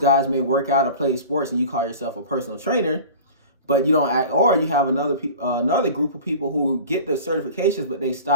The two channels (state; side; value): inverted; both; correlation -0.39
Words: guys may work out or play sports, and you call yourself a personal trainer, but you don't act, or you have another group of people who get the certifications, but they